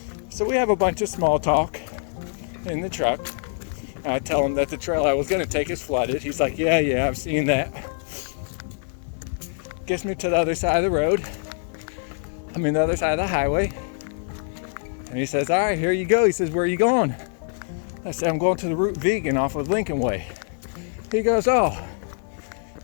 So we have a bunch of small talk in the truck. I tell him that the trail I was going to take is flooded. He's like, yeah, I've seen that. Gets me to the other side of the road. The other side of the highway. And he says, all right, here you go. He says, where are you going? I said, I'm going to the Route Vegan off of Lincoln Way. He goes, oh.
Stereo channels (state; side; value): silent; right; 57 dB below the other